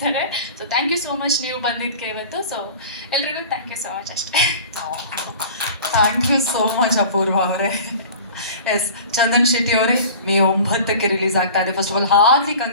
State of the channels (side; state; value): both; inverted; correlation -0.41